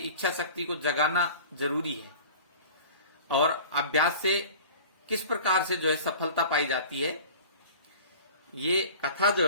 शक्ति को जगाना जरूरी है। और अभ्यास से किस प्रकार से जो है सफलता पाई जाती है, ये कथा जो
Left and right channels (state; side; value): inverted; both; correlation -0.41